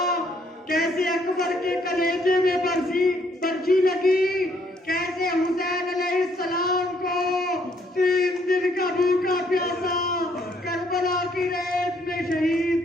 کیسے اکبر کے کلیجے میں برچی لگی، کیسے حسین علیہ السلام کو 3 دن کا بھوکا پیاسا کربلا کی ریت میں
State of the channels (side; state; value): both; normal; correlation 0.68